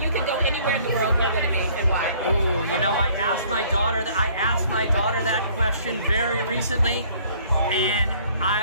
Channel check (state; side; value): inverted; both; correlation -0.58